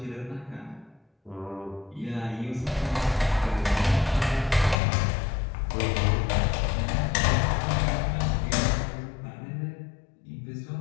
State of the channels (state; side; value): drops out; right; at 4.8 s